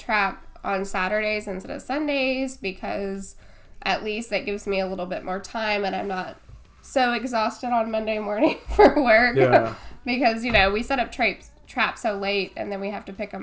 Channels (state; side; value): identical; both; correlation 1.00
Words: on Saturdays instead of Sundays because at least that gives me a little bit more time and I'm not so exhausted on Monday morning for work. Yeah. Because, we set up traps so late and then we have to pick